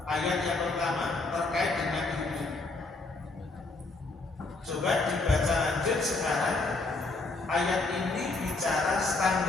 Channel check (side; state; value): right; quieter; 3.4 dB